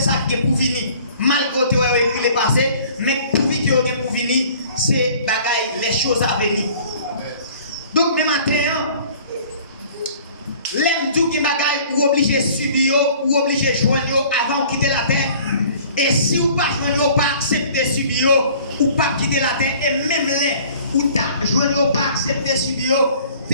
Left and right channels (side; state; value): both; inverted; correlation -0.51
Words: qui est pour venir. Malgré que tu as écrit le passé, mais pour venir pour venir, c'est bagaille les choses à venir. Donc même matin, l'aime tout qui bagaille ou obligé subir ou obligé joindre avant de quitter la terre. Et si vous pas joindre pas accepter subir ou pas quitter la terre et même les ou ta joindre pas accepter subir